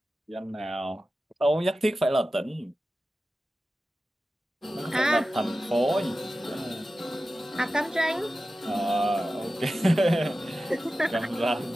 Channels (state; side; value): normal; both; correlation 0.94